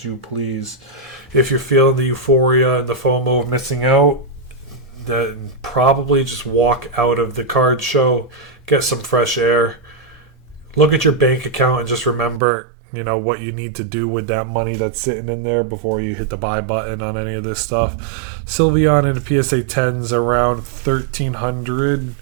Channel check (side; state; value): left; drops out; at 12.4 s